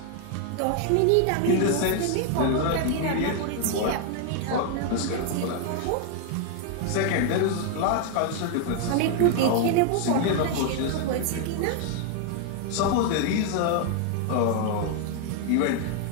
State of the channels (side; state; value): both; different; correlation 0.00